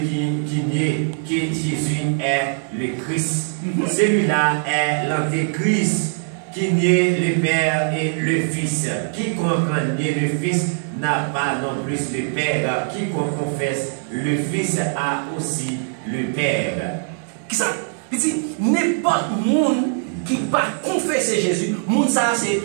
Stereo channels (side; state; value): left; silent; 65 dB below the other